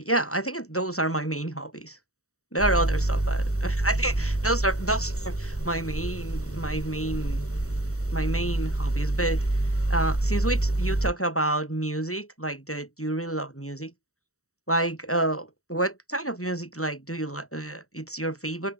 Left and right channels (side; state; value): right; late; 0.64 ms